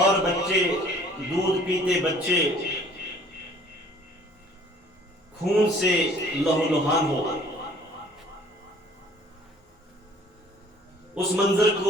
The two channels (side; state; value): both; normal; correlation 0.54